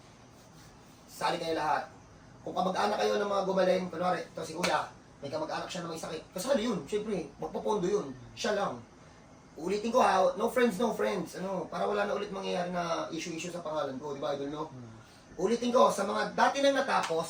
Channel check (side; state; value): both; identical; correlation 1.00